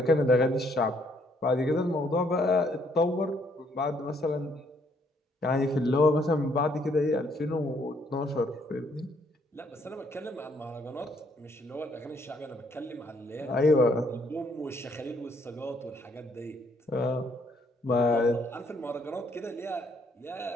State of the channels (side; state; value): both; normal; correlation 0.68